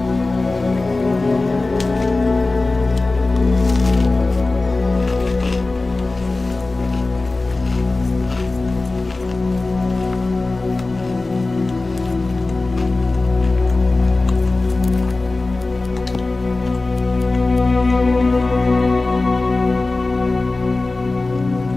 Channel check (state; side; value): quieter; right; 3.3 dB